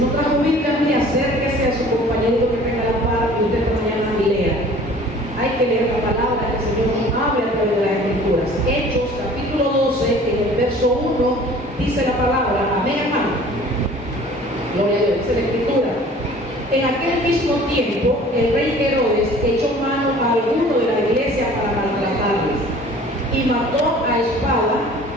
no trajo Biblia, mire, acérquese a su compañero que tenga la par y usted mañana y lea. Hay que leer la palabra que el Señor nos habla a través de las Escrituras. Hechos, capítulo 12, en el verso 1, dice la palabra. Amén, hermano. Gloria a Dios, dice la Escritura. En aquel mismo tiempo, el rey Herodes echó mano a alguno de la iglesia para maltratarles y mató a espada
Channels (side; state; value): both; normal; correlation 0.48